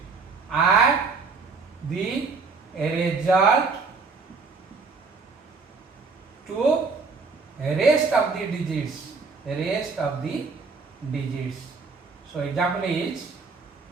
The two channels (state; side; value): quieter; left; 4.5 dB